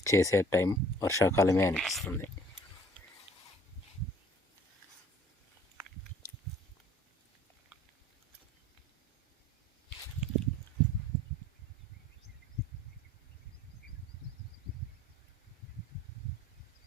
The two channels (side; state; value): both; normal; correlation 0.53